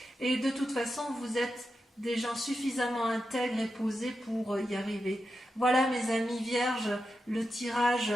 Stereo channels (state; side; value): normal; both; correlation 0.89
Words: et de toute façon vous êtes des gens suffisamment intègres et posés pour y arriver. Voilà mes amis vierges, le tirage